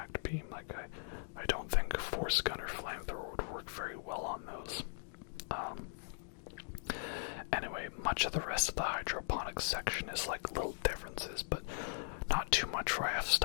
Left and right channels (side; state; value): right; silent; digital silence